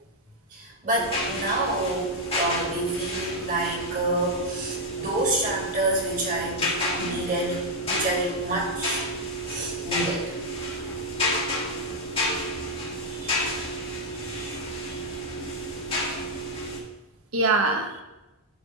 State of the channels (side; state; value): both; normal; correlation -0.02